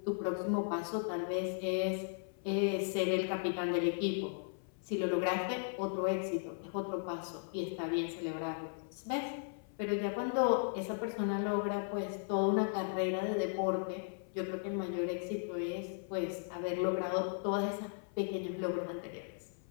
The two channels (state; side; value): silent; right; 53 dB below the other